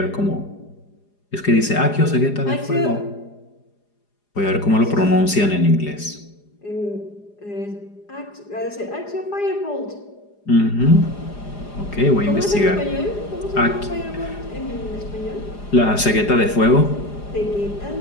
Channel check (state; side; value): late; right; 4.9 ms